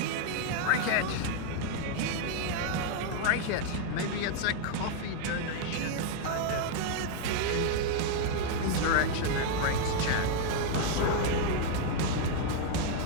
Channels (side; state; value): both; different; correlation 0.00